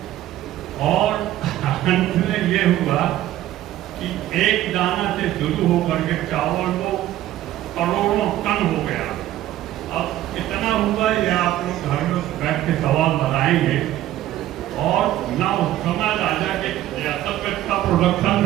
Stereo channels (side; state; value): left; quieter; 13.8 dB